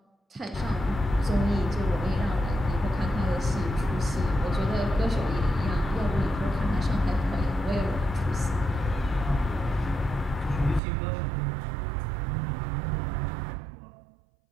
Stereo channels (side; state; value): left; drops out; at 10.8 s